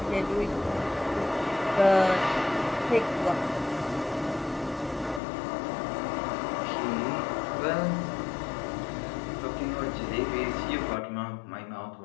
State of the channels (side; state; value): right; drops out; at 5.2 s